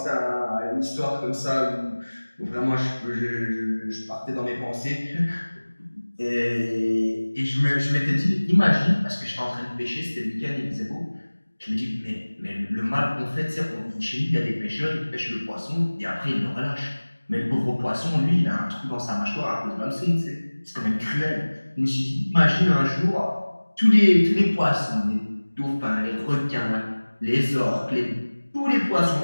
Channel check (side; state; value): both; inverted; correlation -1.00